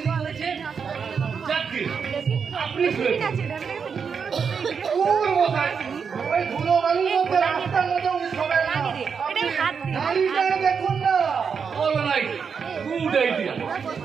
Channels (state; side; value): quieter; left; 6.2 dB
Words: করেছেন। যাকে আপনি ওই ধুলোবালির মধ্যে রাস্তার মধ্যে উনি শোবেন না। আপনি নাড়িটা দেখুন না। All right, good idea.